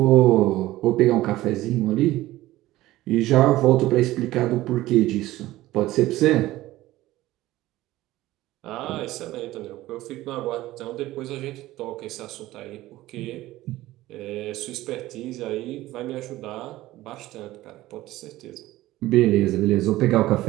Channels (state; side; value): quieter; left; 16.6 dB